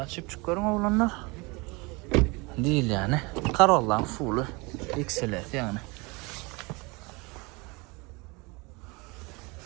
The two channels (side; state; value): left; quieter; 26.9 dB